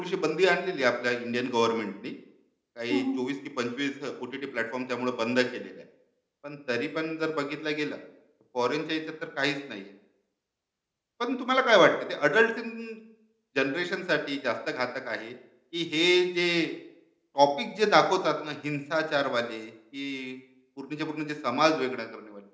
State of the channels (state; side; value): identical; both; correlation 1.00